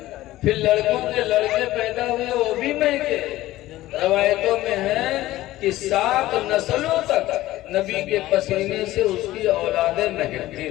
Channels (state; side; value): quieter; right; 16.1 dB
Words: پھر لڑکوں کے لڑکے پیدا ہوئے وہ بھی مہکے۔ روایتوں میں ہے کہ 7 نسلوں تک نبی کے پسینے سے اس کی اولادیں مہکتی